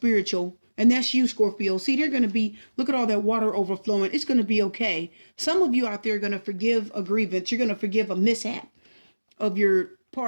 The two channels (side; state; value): both; inverted; correlation -1.00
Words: And that's you, Scorpio. See, they're going to be, look at all that water overflowing. It's going to be okay. Some of you out there are going to forgive a grievance. You're going to forgive a mishap of your